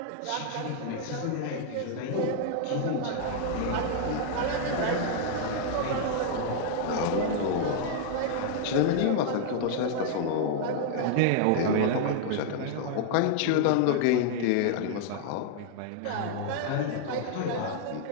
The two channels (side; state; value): both; different; correlation 0.00